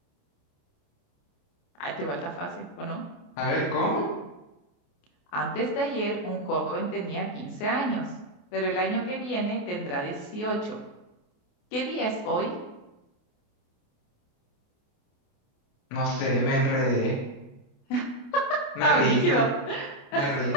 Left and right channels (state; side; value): late; right; 28 ms